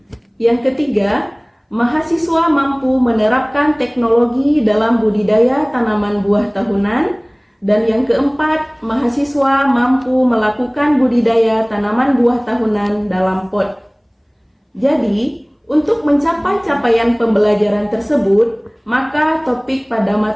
Yang ketiga, mahasiswa mampu menerapkan teknologi dalam budidaya tanaman buah tahunan. Dan yang keempat, mahasiswa mampu melakukan budidaya tanaman buah tahunan dalam pot. Jadi, untuk mencapai capaian pembelajaran tersebut, maka topik pada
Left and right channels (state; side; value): identical; both; correlation 1.00